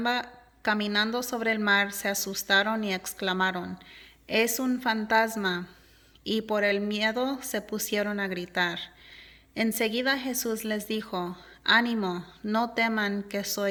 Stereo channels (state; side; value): identical; both; correlation 1.00